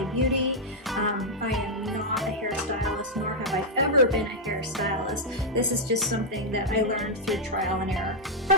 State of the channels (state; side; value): normal; both; correlation -0.04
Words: Beauty. I am not a hairstylist, nor have I ever been a hairstylist. This is just something that I learned through trial and error.